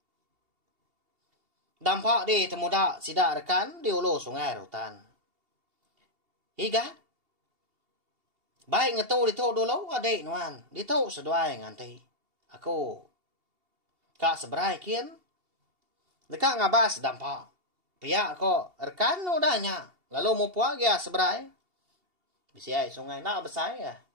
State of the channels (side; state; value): left; late; 2.8 ms